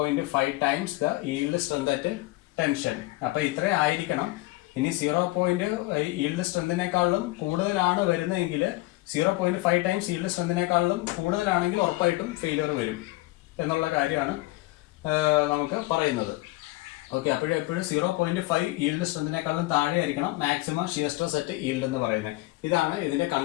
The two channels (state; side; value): quieter; right; 19.7 dB